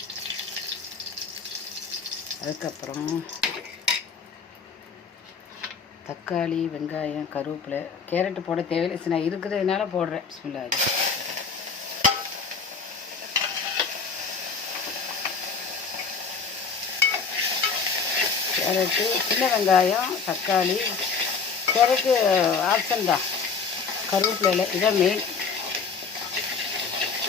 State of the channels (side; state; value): right; quieter; 5.3 dB